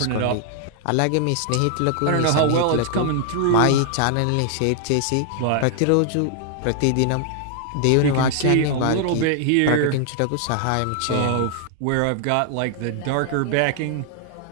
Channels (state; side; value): different; both; correlation -0.01